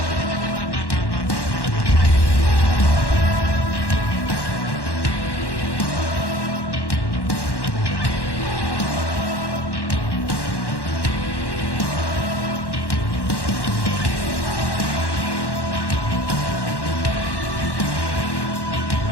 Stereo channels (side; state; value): right; late; 1.1 ms